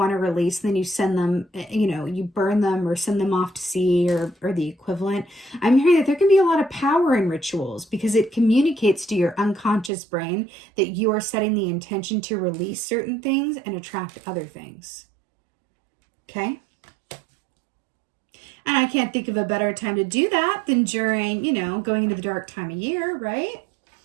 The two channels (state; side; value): drops out; left; at 9.9 s